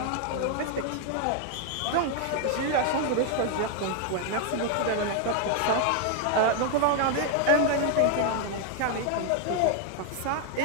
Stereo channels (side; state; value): both; different; correlation 0.00